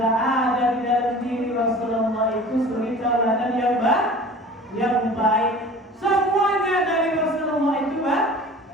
ada di dalam diri Rasulullah itu suri tauladan yang baik. Semuanya dari Rasulullah itu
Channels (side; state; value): both; normal; correlation 0.42